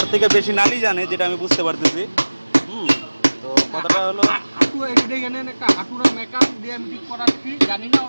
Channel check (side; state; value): both; inverted; correlation -1.00